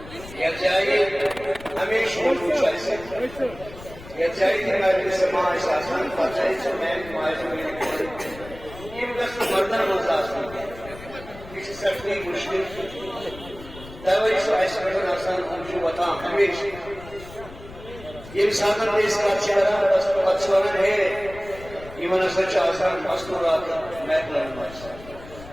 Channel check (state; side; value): noise; left; rumble, 16 dB below the sound